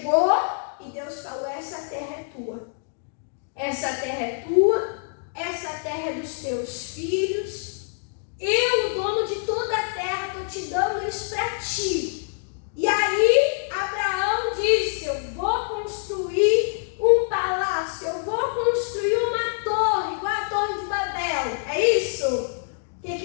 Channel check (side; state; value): right; silent; digital silence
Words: e Deus falou, essa terra é tua. Essa terra é tua, essa terra é dos teus filhos. Eu, o dono de toda a terra, estou te dando isso para ti. E aí, Abraão disse, eu vou construir um palácio, eu vou construir uma torre, igual a Torre de Babel. É isso? O